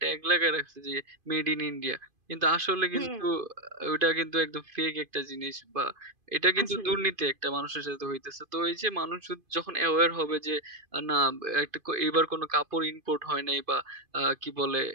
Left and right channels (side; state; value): left; late; 2.5 ms